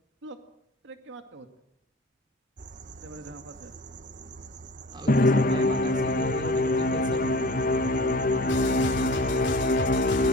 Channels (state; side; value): normal; both; correlation 0.42